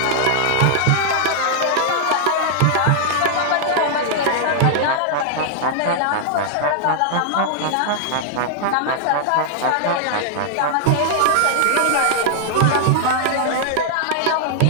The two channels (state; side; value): different; both; correlation -0.01